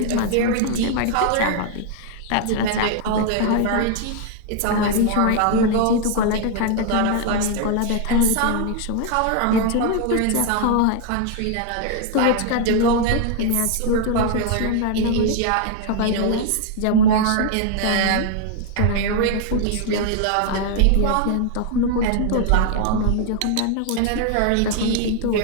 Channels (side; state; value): both; different; correlation 0.00